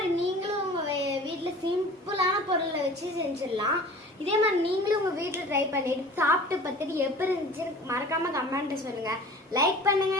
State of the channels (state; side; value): normal; both; correlation 0.43